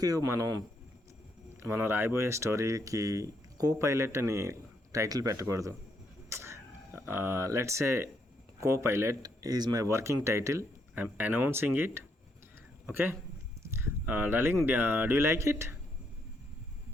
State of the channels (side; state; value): both; normal; correlation 0.75